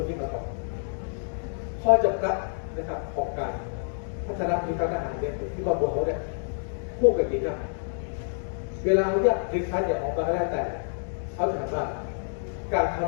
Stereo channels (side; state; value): right; silent; digital silence